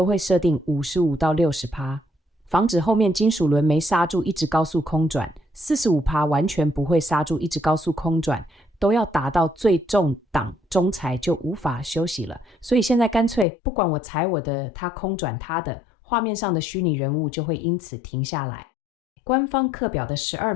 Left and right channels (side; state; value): right; drops out; at 13.5 s